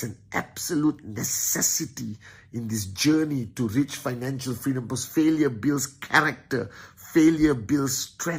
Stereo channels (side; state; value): both; identical; correlation 1.00